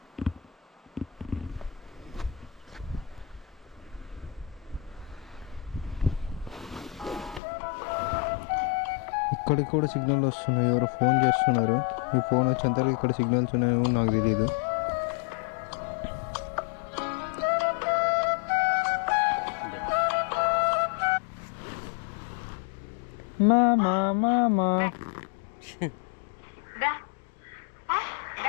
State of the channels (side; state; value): right; drops out; at 7.4 s